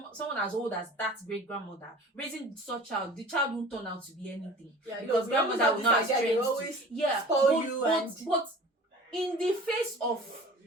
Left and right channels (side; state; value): both; normal; correlation 0.42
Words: as old as that great grandmother raising such child, the child won't turn out to be anything, because grandmother will not have strength to, spoil you but in the face of